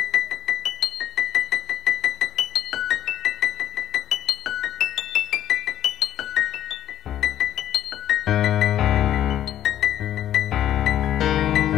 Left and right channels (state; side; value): quieter; right; 11.6 dB